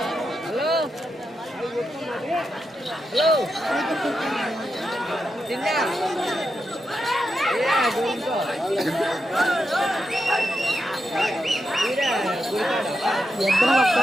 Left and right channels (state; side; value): normal; both; correlation 0.87